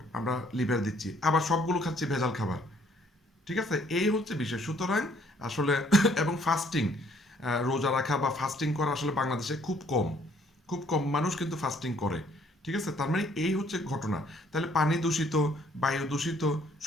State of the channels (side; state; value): both; normal; correlation 0.63